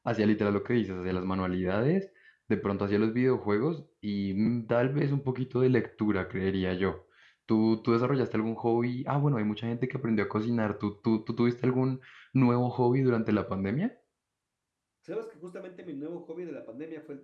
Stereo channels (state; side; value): identical; both; correlation 1.00